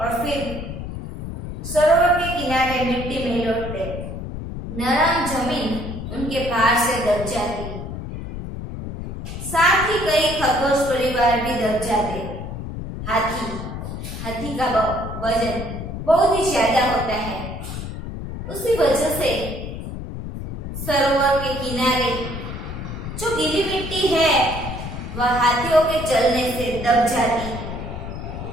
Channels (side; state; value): left; noise; rumble, 7 dB below the sound